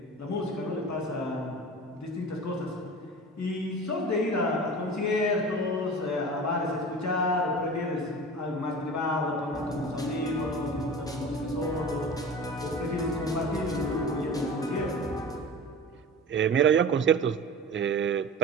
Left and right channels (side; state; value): both; normal; correlation 0.35